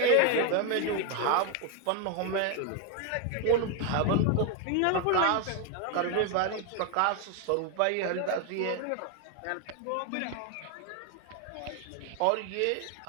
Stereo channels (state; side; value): different; both; correlation 0.01